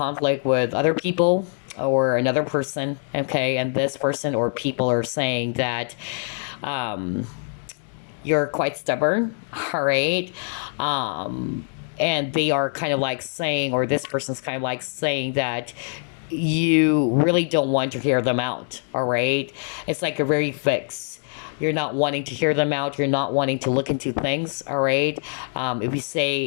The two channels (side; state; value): right; silent; 56 dB below the other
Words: with other people or another person, okay, and this person or people are saying that you're quite stubborn, all right? And they are kind of like saying, or this person's kind of like saying that you really don't want to hear them out, all right? It's like a very fixed. You're not wanting to hear them out. You're not wanting to look into things, all right? If you say